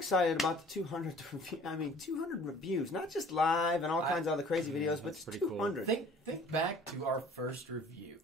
about the 200 200 reviews, not just live and all kinds of other crazy videos, but that's it's pretty cool. 200. Think back to our first review.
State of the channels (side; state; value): both; normal; correlation 0.51